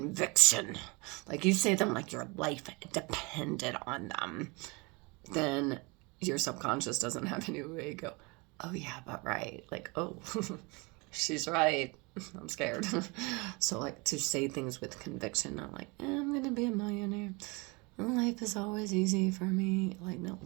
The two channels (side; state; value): left; quieter; 27.6 dB